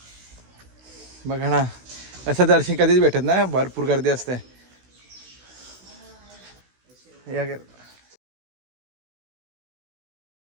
बघा ना, असं दर्शन कधीच भेटत ना, भरपूर गर्दी असते. या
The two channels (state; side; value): late; left; 16 ms